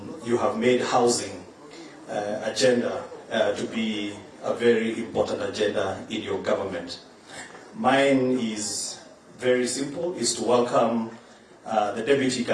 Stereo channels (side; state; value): both; identical; correlation 1.00